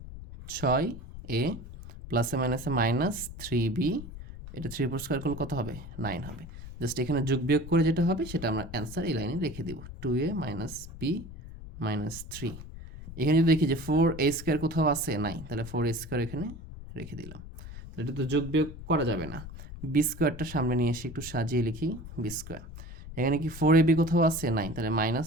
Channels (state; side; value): noise; left; rumble, 13 dB below the sound